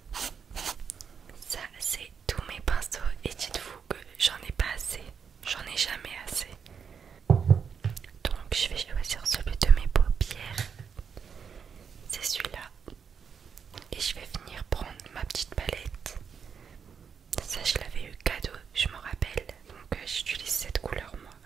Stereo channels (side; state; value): left; quieter; 6.7 dB